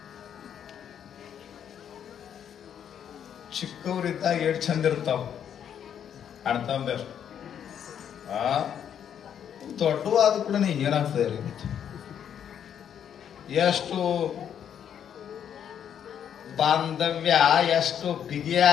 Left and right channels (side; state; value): right; quieter; 8.9 dB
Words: ಚಿಕ್ಕವರಿದ್ದಾಗ ಎಷ್ಟು ಚಂದ ಇರ್ತಾವ ಅಣ್ತಂಬರ್. ದೊಡ್ಡವಾದ ಕೂಡ ಏನಾಗ್ತದೆ ರೀ, ಎಷ್ಟು ಬಾಂಧವ್ಯ ಎಷ್ಟು